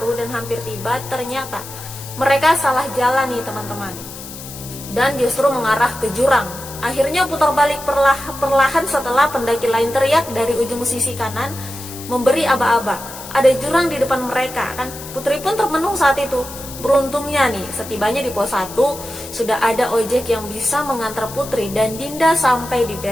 dan hampir tiba, ternyata mereka salah jalan nih teman-teman, dan justru mengarah ke jurang. Akhirnya putar balik perlahan setelah pendaki lain teriak dari ujung sisi kanan memberi aba-aba. Ada jurang di depan mereka kan. Putri pun termenung saat itu. Beruntungnya nih, setibanya di pos 1 sudah ada ojek yang bisa mengantar Putri dan Dinda sampai di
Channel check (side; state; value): left; noise; hiss, 13 dB below the sound